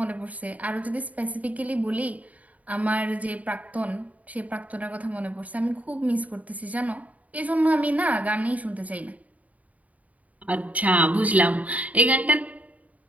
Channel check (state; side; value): late; left; 0.071 ms